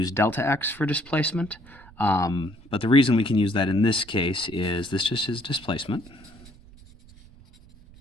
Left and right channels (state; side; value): noise; right; rumble, 23 dB below the sound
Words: delta x for displacement, but the reason we can use that in this case is this just is displacement,